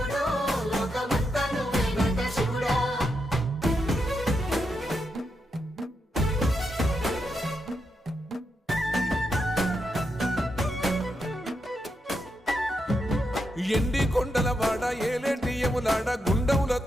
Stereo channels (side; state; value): both; normal; correlation 0.84